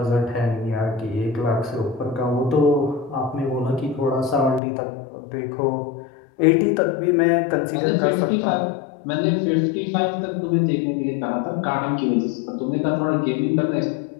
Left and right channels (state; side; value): drops out; right; at 4.6 s